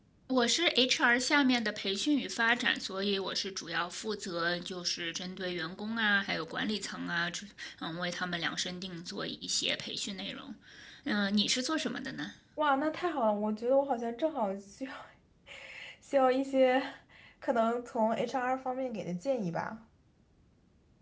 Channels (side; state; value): both; identical; correlation 1.00